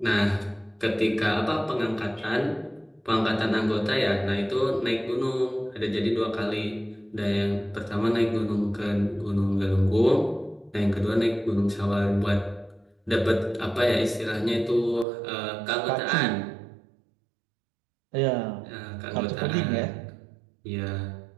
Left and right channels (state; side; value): drops out; left; at 15.1 s